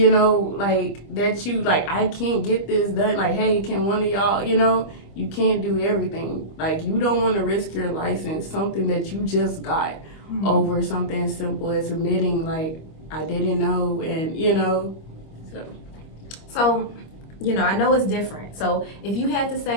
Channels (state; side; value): late; right; 25 ms